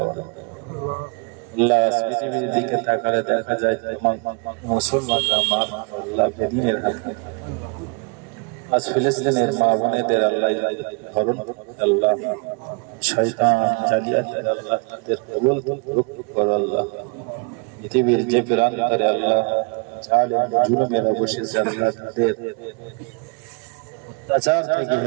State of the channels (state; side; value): quieter; left; 32.9 dB